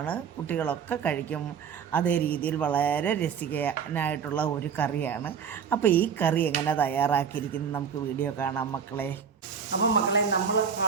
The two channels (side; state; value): left; quieter; 7.0 dB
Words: കുട്ടികളൊക്കെ കഴിക്കും. അതേ രീതിയിൽ വളരെ രസിക്കാനായിട്ടുള്ള ഒരു കറിയാണ്. അപ്പോൾ ഈ കറി എങ്ങനെ തയ്യാറാക്കിയിരിക്കുന്നത് നമുക്ക് വീഡിയോ കാണാം മക്കളെ. അപ്പം മക്കളെ, നമ്മൾ